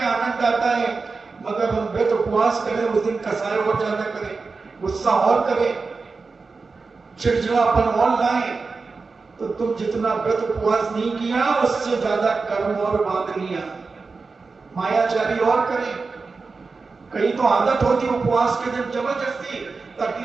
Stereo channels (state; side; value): quieter; left; 4.3 dB